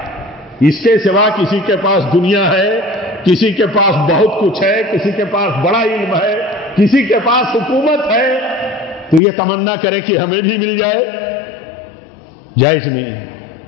اس کے سوا کسی کے پاس دنیا ہے، کسی کے پاس بہت کچھ ہے، کسی کے پاس بڑا علم ہے، کسی کے پاس حکومت ہے، تو یہ تمنا کرے کہ ہمیں بھی مل جائے، جائز نہیں ہے،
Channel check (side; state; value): right; drops out; at 9.2 s